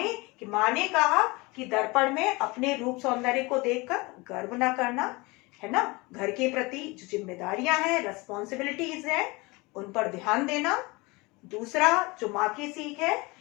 ने कहा कि दर्पण में अपने रूप सौंदर्य को देखकर गर्व ना करना, है ना, घर के प्रति जो जिम्मेदारियां हैं, रेस्पॉन्सिबिलिटीज है, उन पर ध्यान देना। दूसरा जो माँ की सीख है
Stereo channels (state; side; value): quieter; right; 24.6 dB